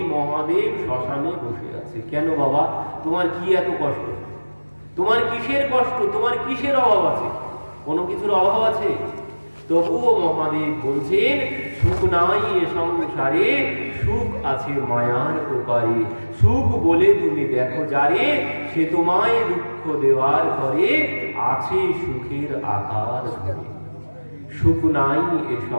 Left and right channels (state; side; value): inverted; both; correlation -1.00